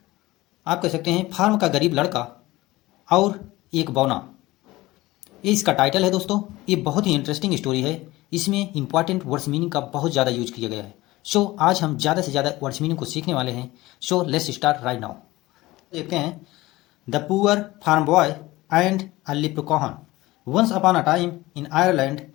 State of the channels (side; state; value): right; quieter; 18.9 dB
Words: आप कह सकते हैं फार्म का गरीब लड़का और एक बौना, ये इसका टाइटल है। दोस्तों, ये बहुत ही इंटरेस्टिंग स्टोरी है। इसमें इंपॉर्टेंट वर्ड्स मीनिंग का बहुत ज़्यादा यूज किया गया है। सो आज हम ज़्यादा से ज़्यादा वर्ड्स मीनिंग को सीखने वाले हैं। So let's start right now. देखते हैं the poor farm boy and a leprechaun. Once upon a time in Ireland